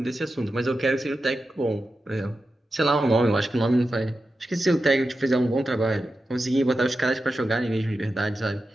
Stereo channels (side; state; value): both; normal; correlation 0.91